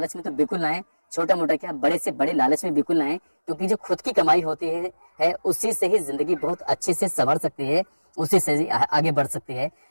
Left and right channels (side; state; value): both; inverted; correlation -1.00